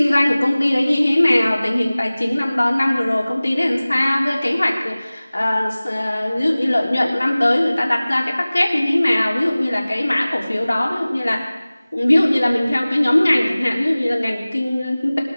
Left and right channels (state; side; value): inverted; both; correlation -0.99